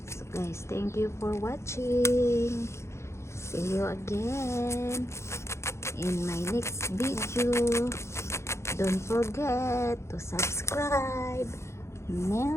So guys, thank you for watching. See you again in my next video. Don't forget to subscribe.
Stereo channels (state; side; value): late; right; 0.13 ms